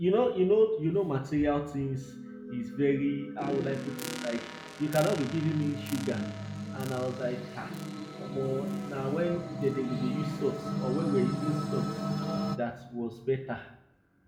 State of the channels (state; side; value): identical; both; correlation 1.00